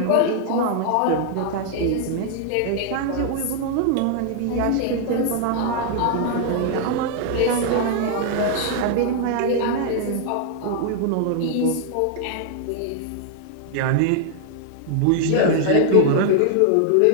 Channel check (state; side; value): different; both; correlation 0.00